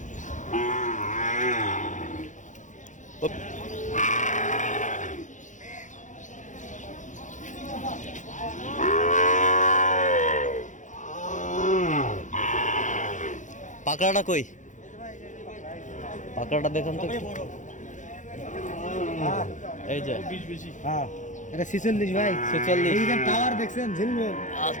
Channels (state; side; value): late; right; 0.36 ms